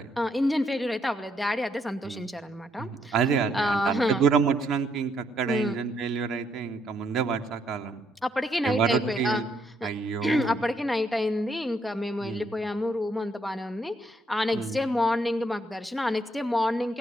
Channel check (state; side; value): normal; both; correlation 0.73